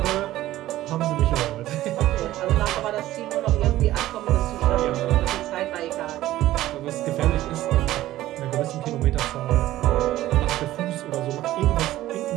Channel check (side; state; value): left; quieter; 15.0 dB